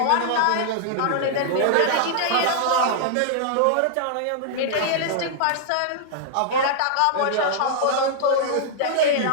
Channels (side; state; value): both; different; correlation -0.01